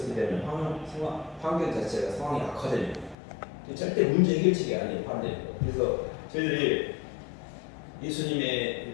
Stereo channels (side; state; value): right; drops out; at 3.2 s